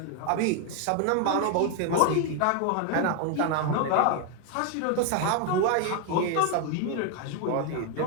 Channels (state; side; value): different; both; correlation 0.01